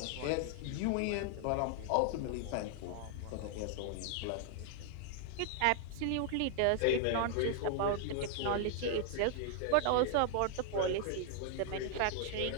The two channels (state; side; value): different; both; correlation 0.00